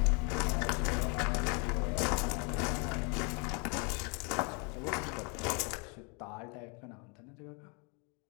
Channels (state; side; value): quieter; right; 34.2 dB